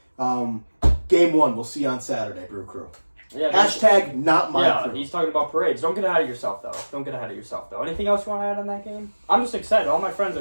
Game 1, we'll see you on Saturday, Brew Crew. Yeah, Hashtag not my crew. He's talking about parades. Don't get ahead of yourself, though. Anything else you want to add on that game? I'm just excited. All my friends are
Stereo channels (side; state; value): both; inverted; correlation -1.00